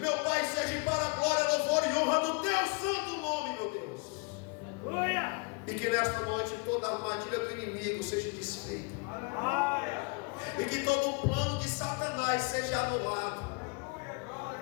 Pai, seja para a glória, louvor e honra do Teu santo nome, meu Deus. E que nesta noite toda a armadilha do inimigo seja desfeita, e que todo o plano de Satanás seja anulado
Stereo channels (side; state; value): right; quieter; 32.1 dB